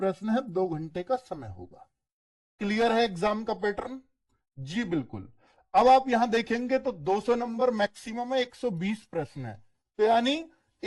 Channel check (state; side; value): identical; both; correlation 1.00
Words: है, 2 घंटे का समय होगा। क्लियर है एग्जाम का पैटर्न? जी बिल्कुल। अब आप यहां देखेंगे तो 200 नंबर मैक्सिमम है, 120 प्रश्न है, तो यानी